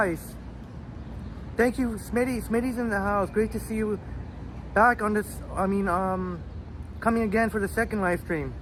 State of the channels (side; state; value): both; identical; correlation 1.00